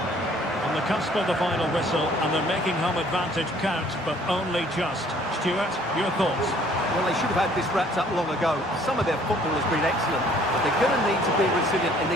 On the cusp of the final whistle, and they're making home advantage count, but only just. Stuart, your thoughts? Well, they should have had this wrapped up long ago. Some of their football has been excellent, but they're going to need to be resilient in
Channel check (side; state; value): both; normal; correlation 0.58